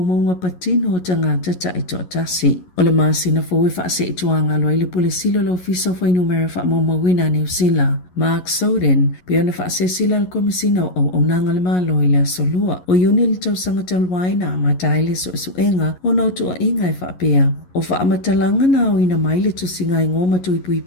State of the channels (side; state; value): right; late; 11 ms